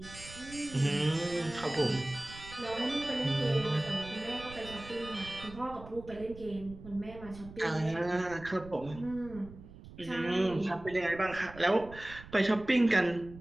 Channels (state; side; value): noise; right; rumble, 16 dB below the sound